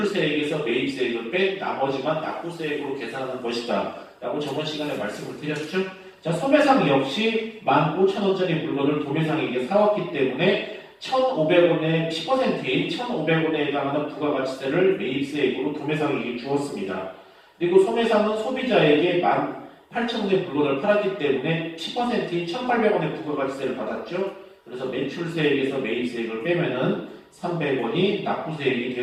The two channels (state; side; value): identical; both; correlation 1.00